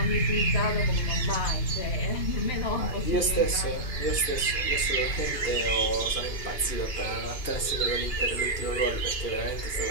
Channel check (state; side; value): late; right; 2.9 ms